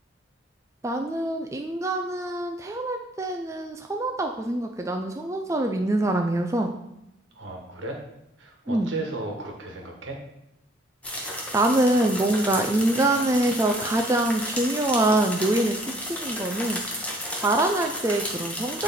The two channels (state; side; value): normal; both; correlation 0.59